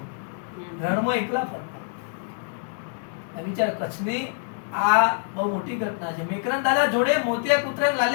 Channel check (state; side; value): silent; right; digital silence